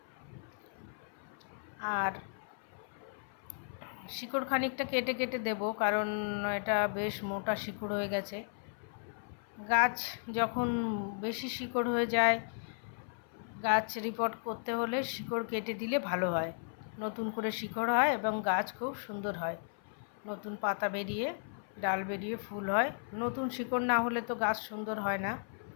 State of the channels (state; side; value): silent; right; 54 dB below the other